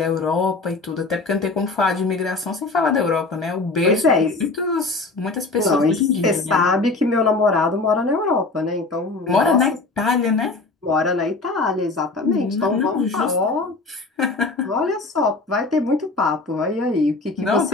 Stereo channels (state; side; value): quieter; right; 3.5 dB